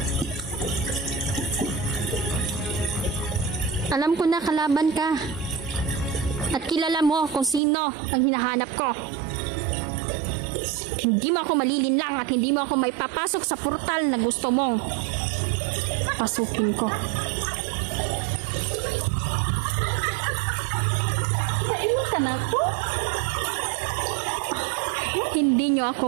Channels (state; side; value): drops out; left; at 7.6 s